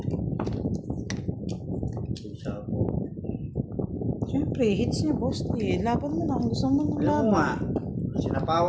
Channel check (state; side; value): identical; both; correlation 1.00